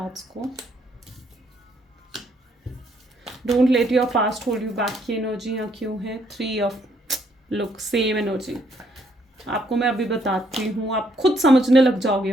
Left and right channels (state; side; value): normal; both; correlation 0.70